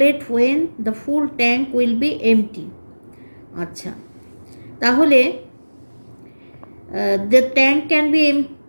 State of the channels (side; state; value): both; inverted; correlation -1.00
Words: when the full tank will be empty. আচ্ছা, তাহলে the tank can be